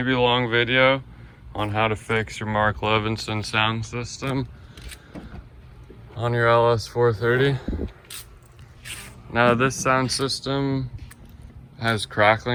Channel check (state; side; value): identical; both; correlation 1.00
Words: long video on how to fix your Mark Levinson sound system on your LS430. Now this sound system has